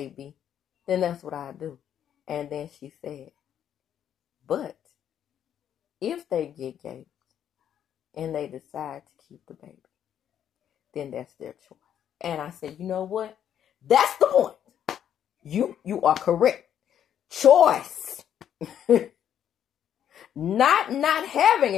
then that's what I do. And then she said, but if they get gaped and they decide to keep the baby, then that's their choice. And I said, you know what? That's the point. You are correct. Choice. Not having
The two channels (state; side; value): quieter; right; 9.7 dB